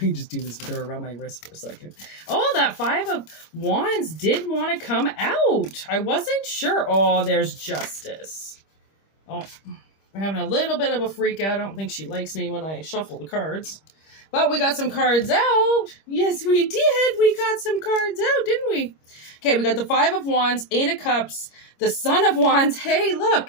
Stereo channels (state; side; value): late; right; 25 ms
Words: just do this with her around my wrist for a second. Oh, that 5 of Wands did want to come out. I wasn't sure. Oh, there's Justice. Oh, we're having a little bit of a freak out. I don't think she likes me when I shuffle the cards. But we got some cards out. Yes, we did. We got some cards out, didn't we? Okay, we got the 5 of Wands, 8 of Cups, the Son of Wands. Hey, look.